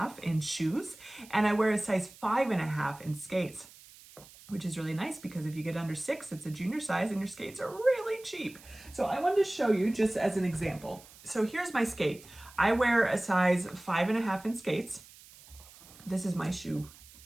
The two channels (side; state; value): right; noise; hiss, 21 dB below the sound